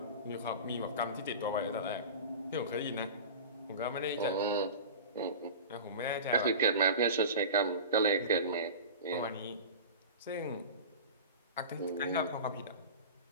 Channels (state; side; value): inverted; both; correlation -0.32